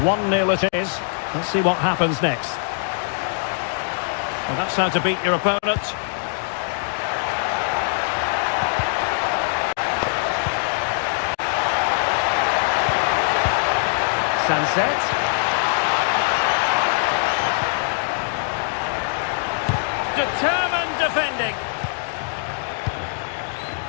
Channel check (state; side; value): silent; right; digital silence